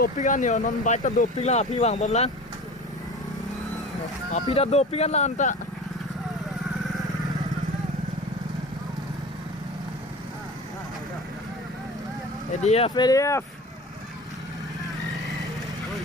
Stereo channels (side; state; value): both; normal; correlation 0.36